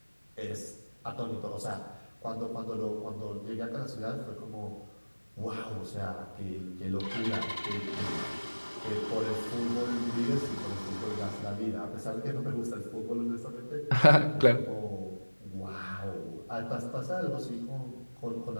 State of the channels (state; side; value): inverted; both; correlation -1.00